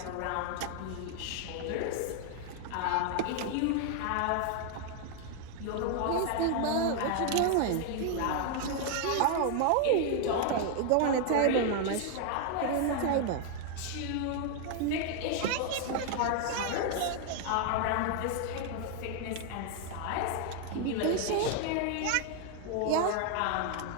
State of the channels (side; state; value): both; different; correlation 0.00